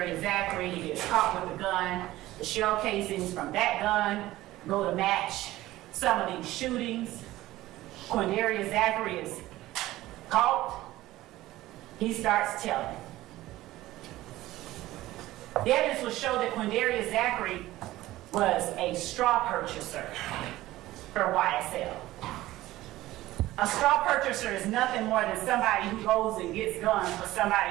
Zachary, he gets caught with a gun. The shell casings from that gun go to match some of these shootings. Quindarius Zachary is caught. He starts telling. The evidence will show that Quindarius Zachary was a straw purchaser for YSL. A straw purchaser is nothing more than somebody who goes and gets guns for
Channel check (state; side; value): quieter; left; 16.5 dB